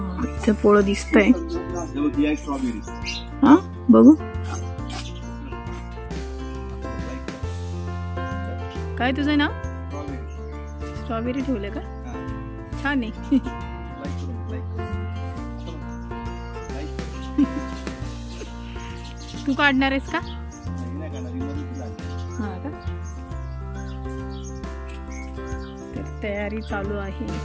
इथे पोळं दिसतंय. हा बघू काय तुझं नाव? स्ट्रॉबेरी ठेवलं का? छान आहे. तू काढणार आहेस का? हा का? तर तयारी चालू आहे.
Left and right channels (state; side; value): identical; both; correlation 1.00